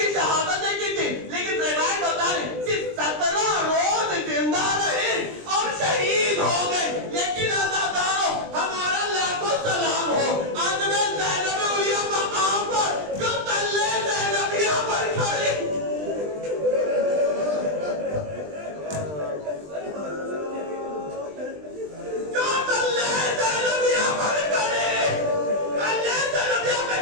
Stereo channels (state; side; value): late; left; 20 ms